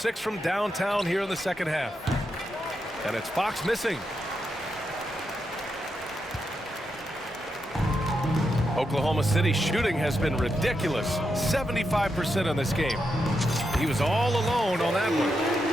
from downtown here in the second half. And it's Fox missing. Oklahoma City shooting has been ridiculous. 75% in this game. He was all alone on that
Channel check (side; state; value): both; normal; correlation 0.85